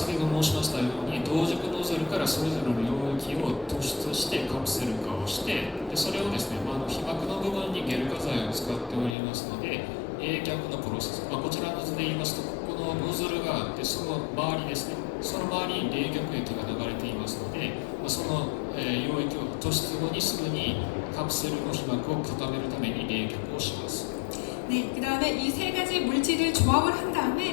ほど申しましたように同軸ノズルからそれぞれの溶液を突出してカプセル化をしてでそれをですね、被膜の部分にゲル化剤を使っておりますので冷却のプロセス、こちらの図で言いますとここのノズルがあってその周りですねその周りに冷却液が流れていますのでその溶液を突出後にすぐにカプセルの被膜を固めるために冷却をします。 네, 그 다음에 이 세 가지 물질을 조합을 한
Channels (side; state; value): right; drops out; at 9.2 s